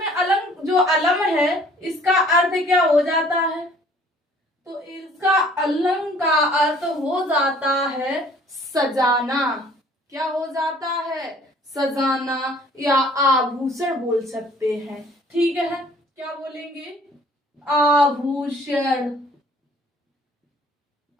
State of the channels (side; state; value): both; normal; correlation 0.55